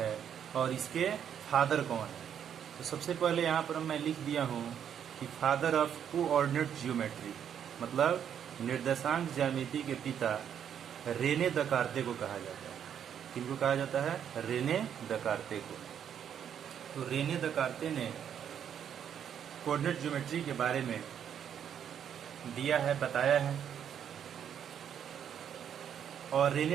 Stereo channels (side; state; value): left; quieter; 8.8 dB